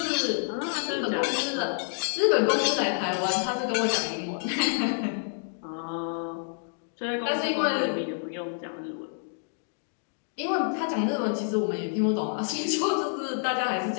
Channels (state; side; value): silent; right; digital silence